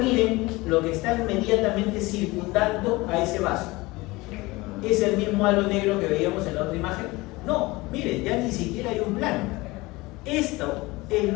lo que está inmediatamente circundando a ese vaso. ¿Es el mismo halo negro que veíamos en la otra imagen? No, miren, ya ni siquiera hay un plano. Esto es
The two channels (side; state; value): right; quieter; 21.8 dB